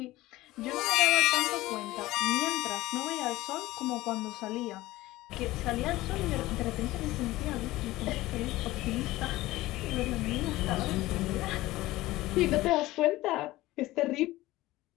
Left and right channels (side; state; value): right; quieter; 17.8 dB